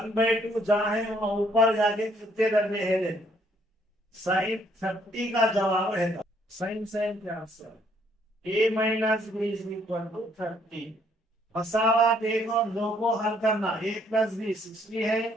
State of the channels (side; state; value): both; normal; correlation 0.67